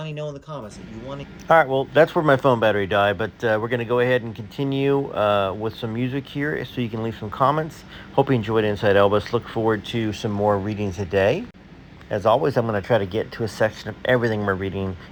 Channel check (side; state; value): both; identical; correlation 1.00